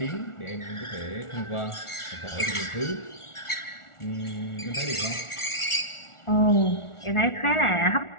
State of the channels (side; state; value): right; late; 1.4 ms